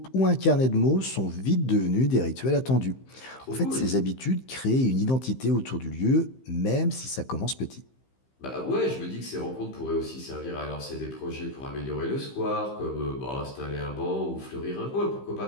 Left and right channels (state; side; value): late; right; 15 ms